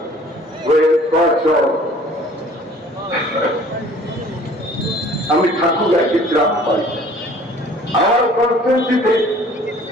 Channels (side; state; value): both; normal; correlation 0.52